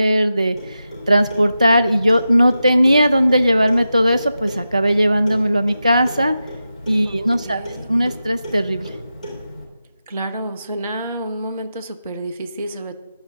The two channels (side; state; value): both; inverted; correlation -0.90